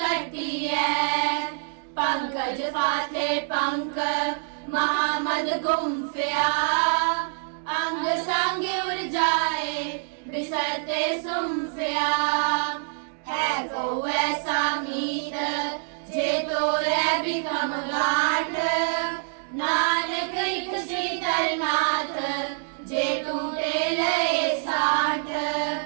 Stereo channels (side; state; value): left; silent; digital silence